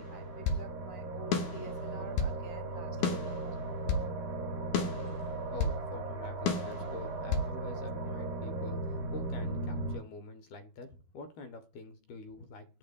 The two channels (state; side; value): late; right; 13 ms